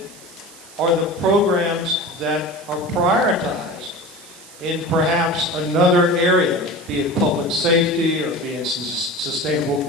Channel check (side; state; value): right; noise; hiss, 20 dB below the sound